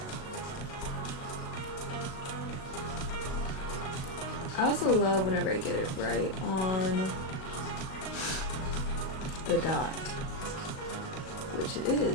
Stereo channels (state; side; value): late; right; 37 ms